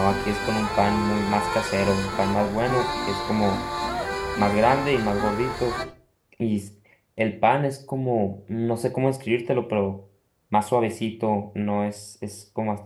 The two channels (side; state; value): both; identical; correlation 1.00